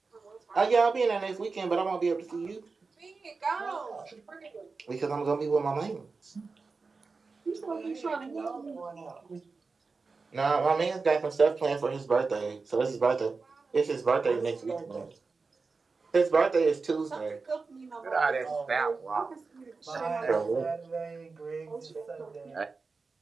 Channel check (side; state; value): left; quieter; 4.3 dB